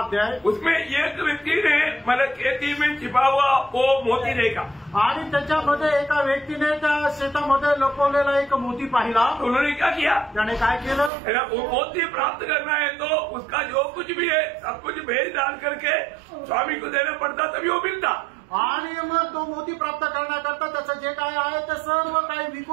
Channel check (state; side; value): drops out; left; at 11.1 s